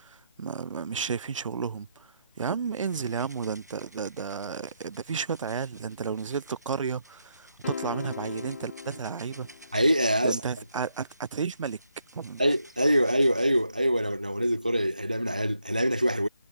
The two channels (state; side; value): inverted; both; correlation -0.78